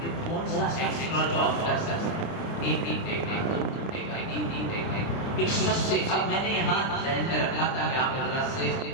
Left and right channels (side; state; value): right; late; 30 ms